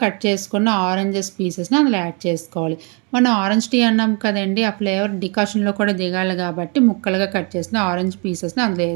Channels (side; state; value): left; quieter; 34.3 dB